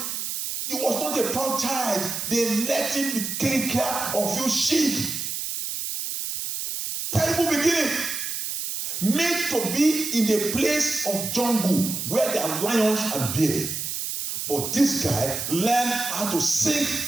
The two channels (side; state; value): right; noise; hiss, 4 dB below the sound